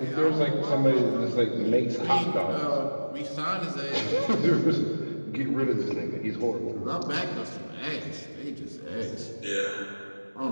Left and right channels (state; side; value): inverted; both; correlation -1.00